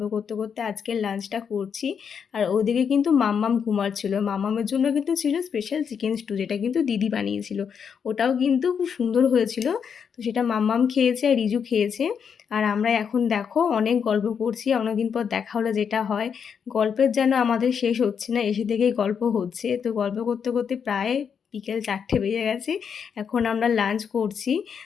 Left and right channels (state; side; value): quieter; right; 7.0 dB